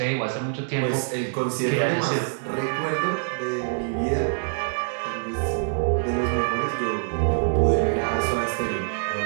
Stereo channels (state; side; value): silent; left; 62 dB below the other